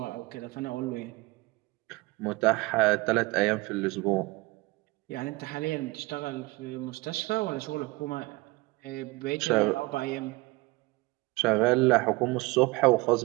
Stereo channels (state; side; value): quieter; left; 23.0 dB